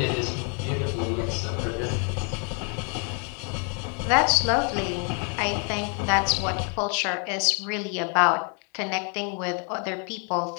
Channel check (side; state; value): right; quieter; 38.3 dB